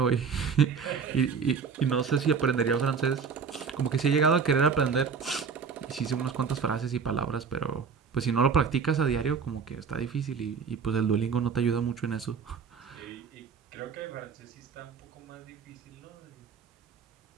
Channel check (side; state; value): left; quieter; 5.9 dB